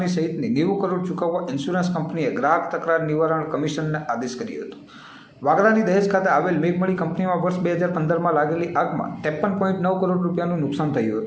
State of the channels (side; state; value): both; identical; correlation 1.00